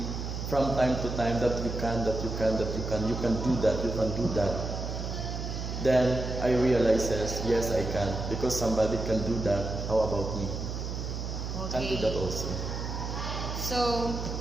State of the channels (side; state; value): right; noise; hum, 5 dB below the sound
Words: from time to time that you can do that, Then I realizes, yes, I can. Because somebody can do that, how about me? Can do that also. So,